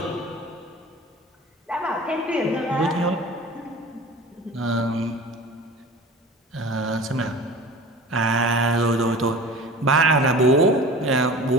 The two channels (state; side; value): normal; both; correlation 0.39